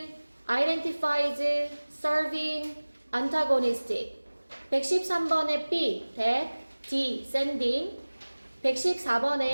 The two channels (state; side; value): inverted; both; correlation -1.00